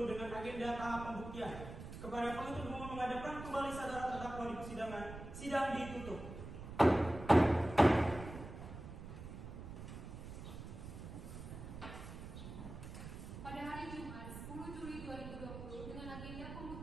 dengan agenda tahap pembuktian. Kepada penuntut umum menghadapkan kembali saudara terdakwa di persidangan, sidang ditutup. Pada hari Jumat 10 Juli 2020 dengan agenda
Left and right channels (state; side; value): noise; right; rumble, 10 dB below the sound